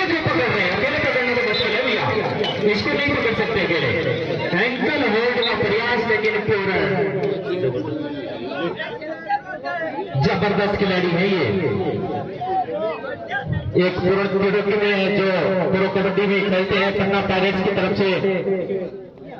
क्यों पकड़ रहे हैं? अकेले पकड़ने तो मुश्किल है भैया, इसको नहीं पकड़ सकते अकेले। एंकल होल्ड का प्रयास लेकिन पूरा जबरदस्त खिलाड़ी है ये। एक प्रो कबड्डी में जो प्रो कबड्डी में खेलते हैं पन्ना पायरेट्स की तरफ से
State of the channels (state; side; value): identical; both; correlation 1.00